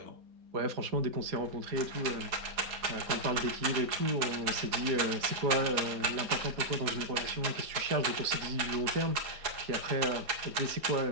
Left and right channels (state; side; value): late; left; 4.2 ms